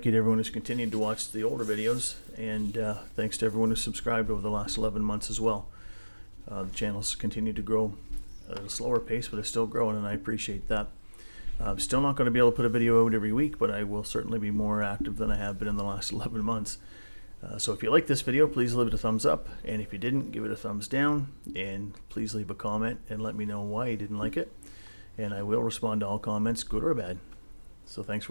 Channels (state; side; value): inverted; both; correlation -1.00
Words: you to everyone who's continued to watch the older videos, and thanks to everyone who's subscribed over the last 11 months as well. The channel's continued to grow at a slower pace, but it's still growing, and I appreciate that. I'm still not going to be able to put a video out every week, but I will certainly be more active than I have been in the last 11 months. So if you like this video, please leave it a thumbs up, and if you didn't, give it a thumbs down, and please leave a comment and let me know why you didn't like it, and I will respond to all comments, good or bad. So thanks